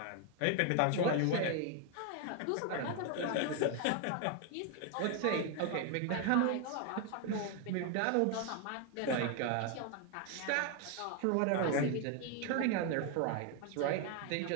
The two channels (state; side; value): different; both; correlation 0.01